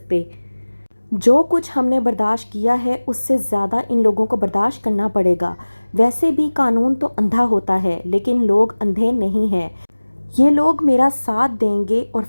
जो कुछ हमने बर्दाश्त किया है उससे ज़्यादा इन लोगों को बर्दाश्त करना पड़ेगा। वैसे भी कानून तो अंधा होता है, लेकिन लोग अंधे नहीं हैं। ये लोग मेरा साथ देंगे और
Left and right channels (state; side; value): inverted; both; correlation -1.00